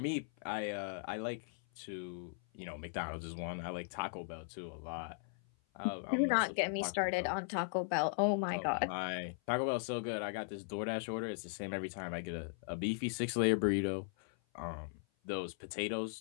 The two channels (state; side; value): silent; right; 52 dB below the other